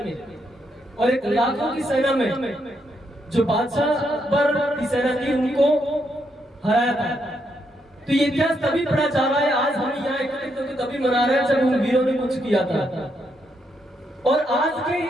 और एक लाखों की सेना में जो बादशाह अकबर की सेना थी उनको हराया था। तो ये इतिहास तभी पढ़ा जा रहा है, आज हम यहाँ एकत्रित होकर तभी मना रहे हैं जब उन वीरों ने कुछ किया था। और आज के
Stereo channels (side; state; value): both; normal; correlation 0.78